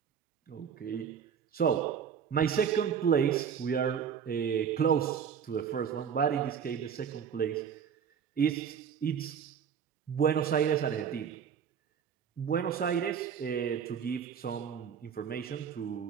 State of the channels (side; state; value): left; quieter; 7.5 dB